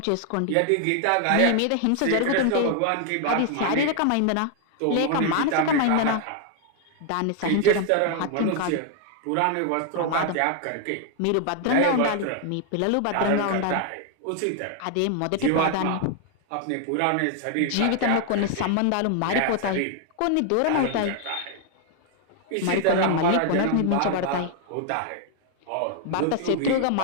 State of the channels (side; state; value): both; different; correlation 0.00